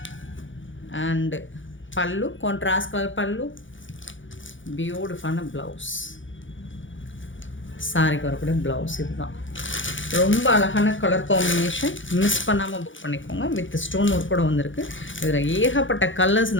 அண்டு பல்லு, கான்ட்ராஸ்ட் கலர் பல்லு, பியூட்டிஃபுல்லான ப்ளவுஸ். சாரிக்கு வரக்கூடிய ப்ளவுஸ் இதுதான். ரொம்ப அழகான கலர் காம்பினேஷன். மிஸ் பண்ணாமல் புக் பண்ணிக்கோங்க. வித் ஸ்டோன் ஒர்க் கூட வந்திருக்கு. இதில் ஏகப்பட்ட கலர்ஸ்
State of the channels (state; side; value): late; right; 0.56 ms